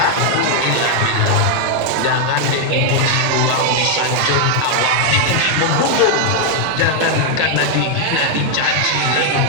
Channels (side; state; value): both; different; correlation 0.00